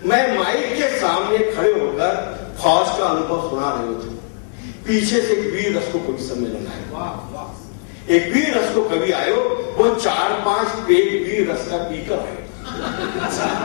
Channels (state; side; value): silent; right; 64 dB below the other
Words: मैं माइक के सामने खड़े होकर फौज का अनुभव सुना रहे थे। पीछे से एक वीर रस को कवि सम्मेलन आयो, एक वीर रस को कवि आयो, वो 4-5 पेग वीर रस का पीकर आयो,